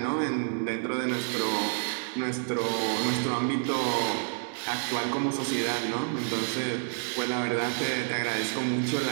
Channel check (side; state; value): left; silent; digital silence